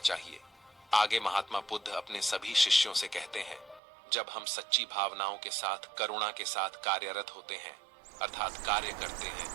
आगे महात्मा बुद्ध अपने सभी शिष्यों से कहते हैं, जब हम सच्ची भावनाओं के साथ, करुणा के साथ कार्यरत होते हैं, अर्थात कार्य करते हैं,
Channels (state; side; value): drops out; left; at 3.8 s